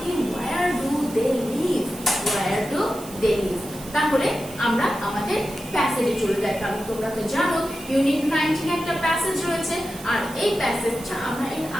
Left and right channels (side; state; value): right; noise; hiss, 16 dB below the sound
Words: কি Where do they live? Where do they live? তাহলে আমরা আমাদের প্যাসেজে চলে যাই, কারণ তোমরা তো জানো ইউনিট 19 একটা প্যাসেজ রয়েছে আর এই প্যাসেজটা আমরা এর